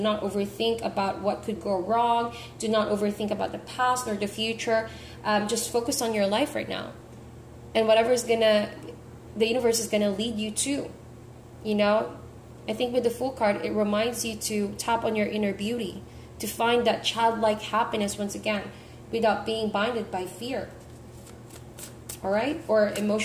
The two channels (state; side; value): identical; both; correlation 1.00